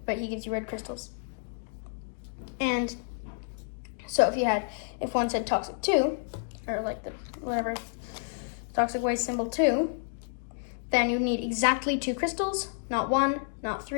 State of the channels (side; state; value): right; silent; digital silence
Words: But he gives you red crystals. And so if one said toxic 2, or whatever, toxic waste symbol 2, then you need exactly 2 crystals, not 1, not